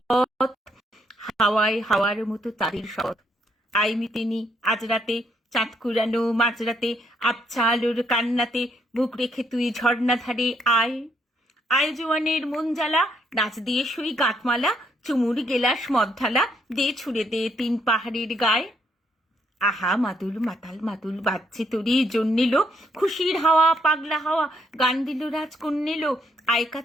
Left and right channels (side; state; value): both; normal; correlation 0.72